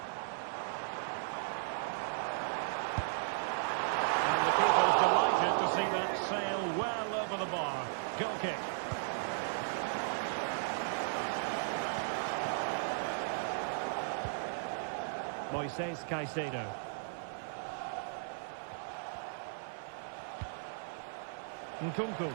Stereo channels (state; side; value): silent; left; 54 dB below the other